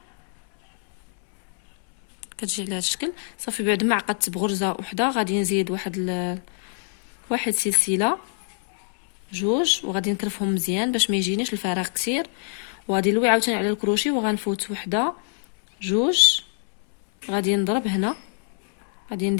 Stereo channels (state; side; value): silent; right; 62 dB below the other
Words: كتجي على هاد الشكل. صافي بعد ما عقدت بغرزه وحده غادي نزيد واحد سلسله، جوج، وغادي نكرفهم مزيان باش ما يجينيش الفراغ كثير، وغادي نلوي عاوتاني على الكروشي وغنفوت وحده، جوج، غادي نضرب هنا، غادي